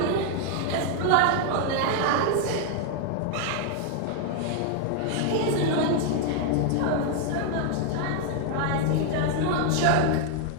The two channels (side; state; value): both; different; correlation 0.00